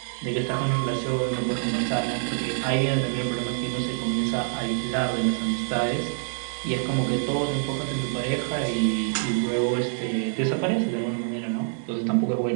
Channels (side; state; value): left; silent; digital silence